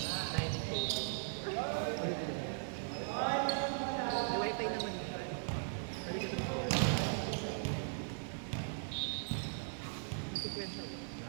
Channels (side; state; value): left; silent; digital silence